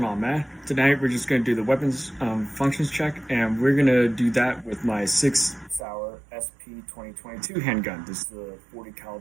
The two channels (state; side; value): drops out; left; at 5.9 s